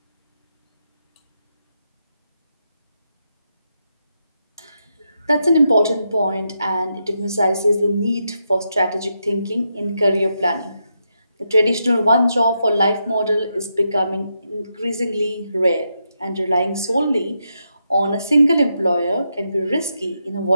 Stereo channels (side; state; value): both; inverted; correlation -0.83